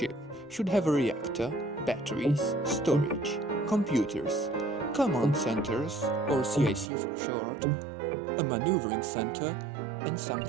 should have a reactor, batteries, storage, computers, command centers, or CIC for short, a maneuvering center, and some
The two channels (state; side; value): drops out; left; at 6.9 s